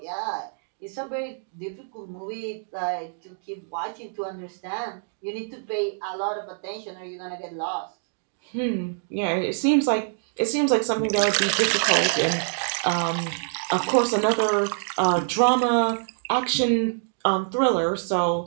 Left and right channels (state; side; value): silent; left; digital silence